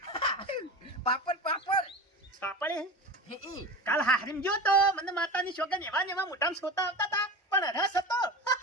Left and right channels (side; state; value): both; normal; correlation 0.30